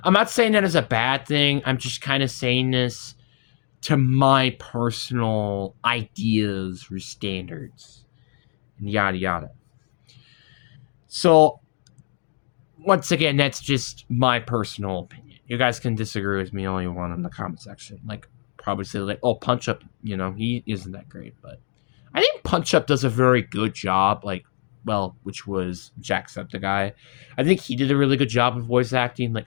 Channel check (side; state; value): right; silent; digital silence